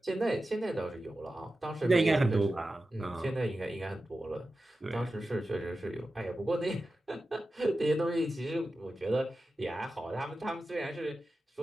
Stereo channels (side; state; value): both; normal; correlation 0.93